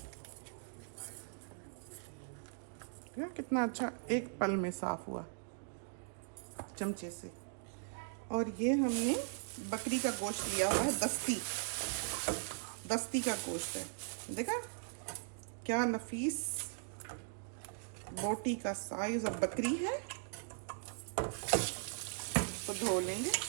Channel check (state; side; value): silent; left; digital silence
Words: कितना अच्छा एक पल में साफ हुआ चमचे से। और ये हमने बकरी का गोश्त लिया हुआ है, दस्ती का गोश्त है। देखा क्या नफीस बोटी का साइज और बकरी है। तो धो लेंगे